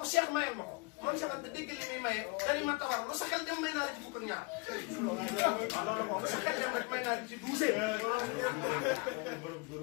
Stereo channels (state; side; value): quieter; right; 27.4 dB